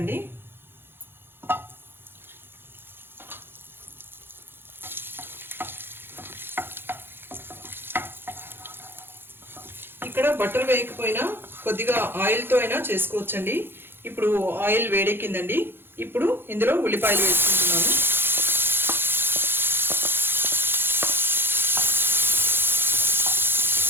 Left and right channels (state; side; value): late; left; 0.10 ms